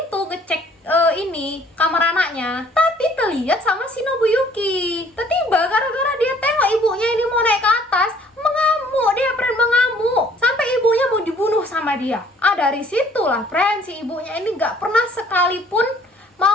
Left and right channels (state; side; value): normal; both; correlation 0.58